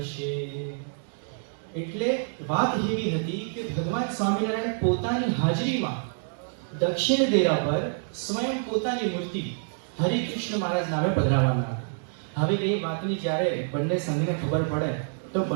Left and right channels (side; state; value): left; silent; digital silence